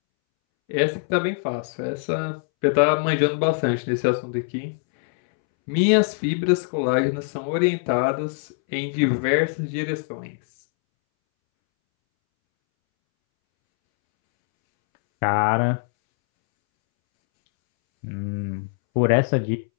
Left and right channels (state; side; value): silent; right; 63 dB below the other